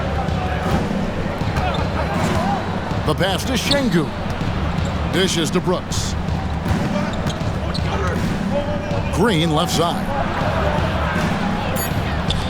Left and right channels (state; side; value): identical; both; correlation 1.00